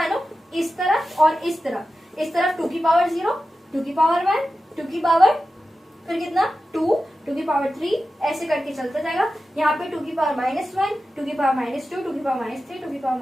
इस तरफ और इस तरफ 2 की पावर 0, 2 की पावर 1, 2 की पावर फिर कितना 2, 2 की पावर 3, ऐसे करके चलता जाएगा, यहाँ पे 2 की पावर -1, 2 की पावर -2, 2 की पावर -3, 2 की पावर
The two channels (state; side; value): normal; both; correlation 0.93